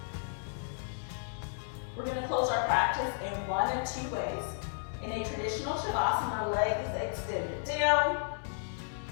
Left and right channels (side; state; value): right; silent; digital silence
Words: We're going to close our practice in one of two ways. In a traditional Shavasana, legs extended down,